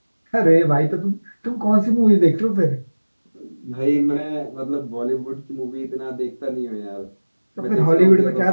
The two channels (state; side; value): inverted; both; correlation -1.00